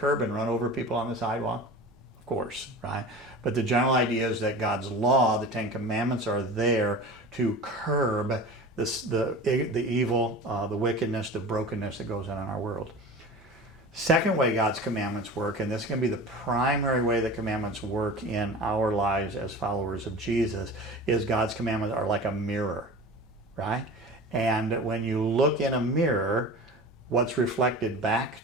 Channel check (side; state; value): both; normal; correlation 0.35